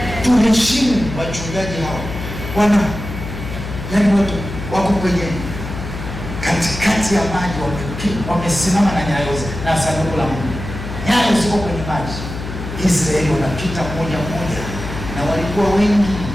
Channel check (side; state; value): left; noise; hum, 8 dB below the sound